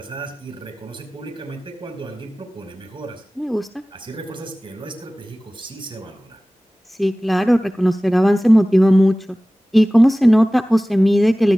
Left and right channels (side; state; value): both; normal; correlation 0.98